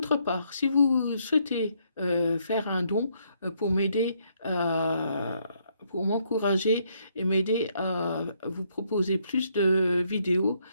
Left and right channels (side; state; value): both; inverted; correlation -0.72